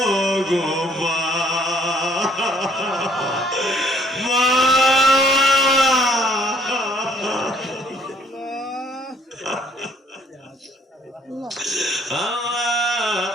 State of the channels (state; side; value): normal; both; correlation 0.61